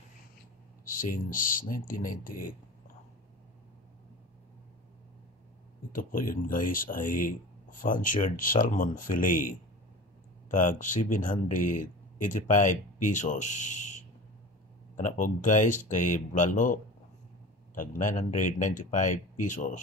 since 1998. Ito po yun guys ay fancied salmon fillet tag 785 pesos. Kana po guys kay bulalo tag 995 pesos.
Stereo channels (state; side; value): normal; both; correlation 0.35